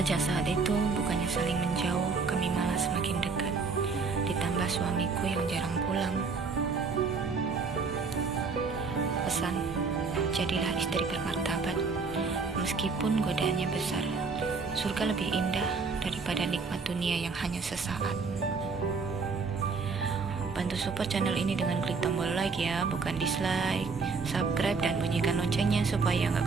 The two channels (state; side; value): quieter; left; 4.7 dB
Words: saat itu, bukannya saling menjauh, kami malah semakin dekat. Ditambah suamiku yang jarang pulang. Pesan, jadilah istri bermartabat. Meskipun godaannya besar, surga lebih indah daripada nikmat dunia yang hanya sesaat. Bantu support channel ini dengan klik tombol like ya, bukan dislike. Subscribe dan bunyikan loncengnya supaya